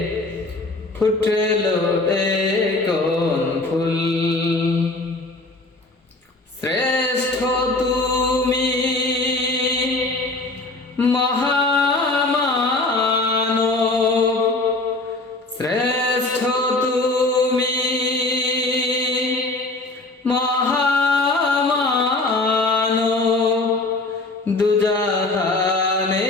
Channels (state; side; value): quieter; right; 3.1 dB